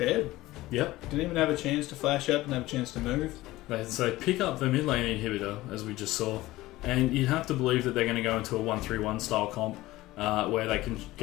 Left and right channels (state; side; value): quieter; right; 17.8 dB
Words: Yep. Didn't even have a chance to flash up, didn't have a chance to move. They pick up the mid lane inhibitor, as we just saw, and you'd have to believe that they're going to go into a 1-3-1 style comp where they can